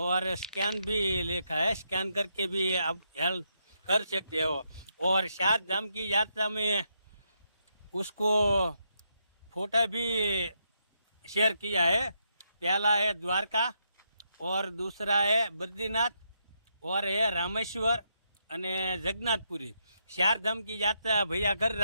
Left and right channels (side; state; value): both; inverted; correlation -0.79